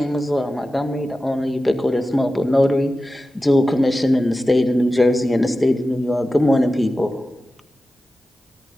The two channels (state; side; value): normal; both; correlation 0.94